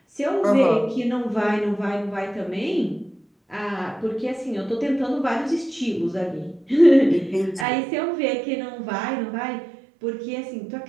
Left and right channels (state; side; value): drops out; left; at 7.7 s